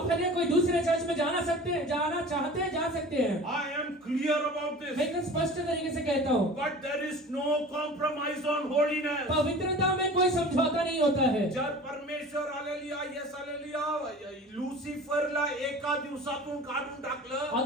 हालेलुया कोई दूसरे चर्च में जाना चाहते हैं, जा सकते हैं। I am clear about मैं this. एकदम स्पष्ट तरीके से कहता हूँ, But there is no compromise on holiness. पवित्रता में कोई समझौता नहीं होता है। जर परमेश्वर हालेलुया, येस हालेलुया, लुसिफरला एका दिवसातून काढून टाकलं,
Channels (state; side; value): normal; both; correlation 0.40